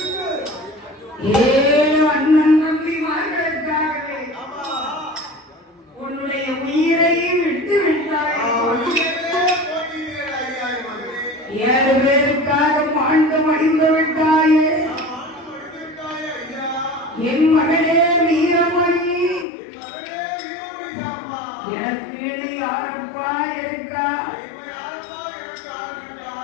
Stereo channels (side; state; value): right; drops out; at 19.5 s